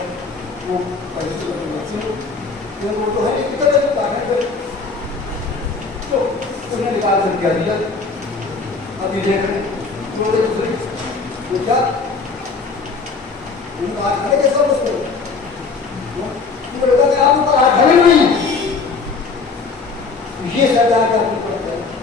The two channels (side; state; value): right; quieter; 4.5 dB